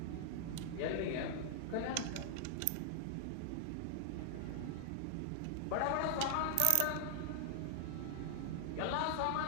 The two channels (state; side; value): different; both; correlation 0.00